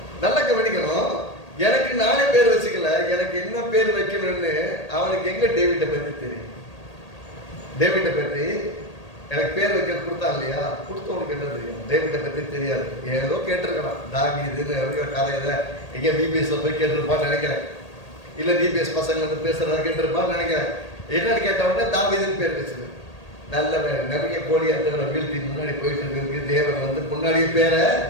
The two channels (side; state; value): right; late; 1.8 ms